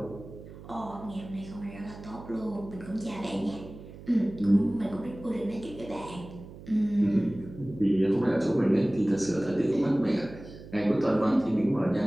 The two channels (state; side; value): noise; right; hum, 16 dB below the sound